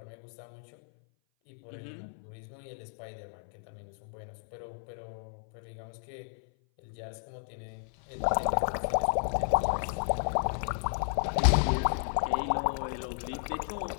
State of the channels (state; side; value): silent; right; 56 dB below the other